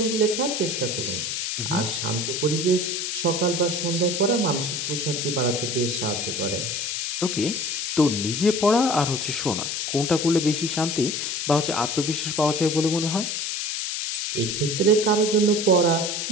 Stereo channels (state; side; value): noise; left; hiss, 2 dB below the sound